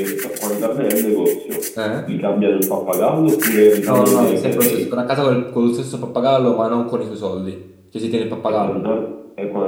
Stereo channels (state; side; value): identical; both; correlation 1.00